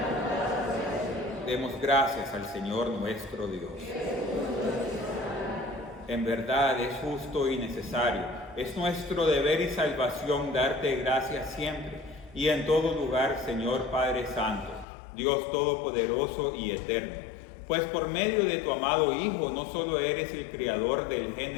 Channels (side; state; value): right; drops out; at 14.9 s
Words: Demos gracias al Señor nuestro Dios. En verdad es justo y necesario. Es nuestro deber y salvación darte gracias siempre y en todo lugar, Señor Padre Santo, Dios Todopoderoso y Eterno, pues por medio de tu amado Hijo no solo eres el Creador del